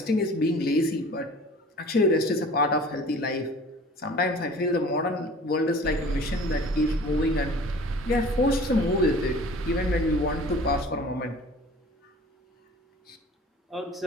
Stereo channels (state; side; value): normal; both; correlation 0.45